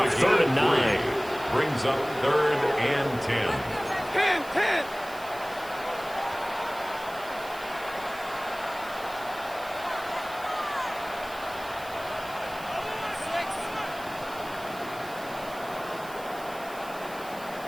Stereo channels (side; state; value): right; noise; hiss, 18 dB below the sound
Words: 3rd and 9. Brings up 3rd and 10. 10.